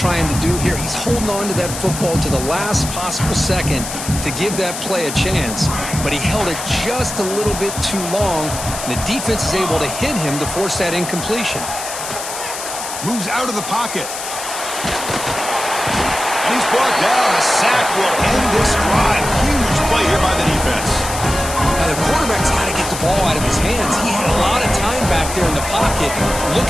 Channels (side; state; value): left; noise; hiss, 7 dB below the sound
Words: to do here. He's holding on to that football to the last possible second to give that play a chance. But he held it just a little bit too long. The defense is able to hit him to force that incompletion. Moves out of the pocket. And he's brought down. A sack will end this drive. Huge play here by the defense. Now, the quarterback's got to get the ball out of his hands. He had a lot of time back there in the pocket,